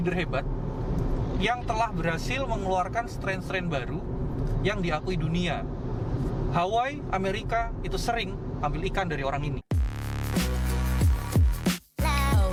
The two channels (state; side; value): identical; both; correlation 1.00